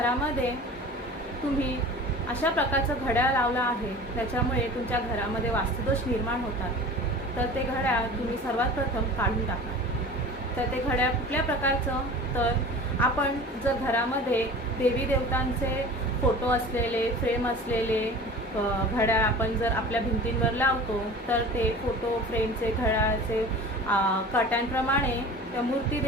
तुम्ही अशा प्रकारचं घड्याळ लावलं आहे त्याच्यामुळे तुमच्या घरामध्ये वास्तुदोष निर्माण होतात, तर ते घड्याळ तुम्ही सर्वात प्रथम काढून टाका। तर ते घड्याळ कुठल्या प्रकारचं, तर आपण जर घरामध्ये देवी देवतांचे फोटो असलेले, फ्रेम असलेले घड्याळ आपण जर आपल्या भिंतींवर लावतो, तर ते फोटो फ्रेमचे घड्याळाचे काट्यांप्रमाणे त्या मूर्ती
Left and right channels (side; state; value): both; normal; correlation 0.39